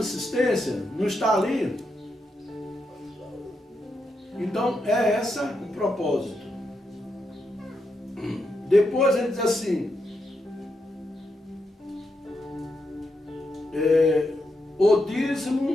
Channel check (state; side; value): normal; both; correlation 0.83